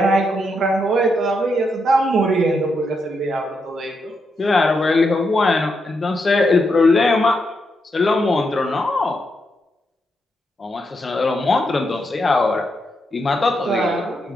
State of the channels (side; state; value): both; normal; correlation 0.82